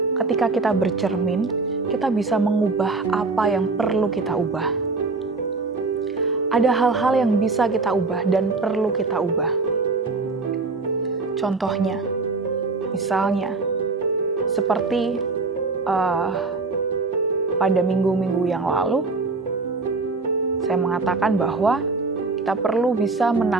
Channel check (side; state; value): left; quieter; 3.8 dB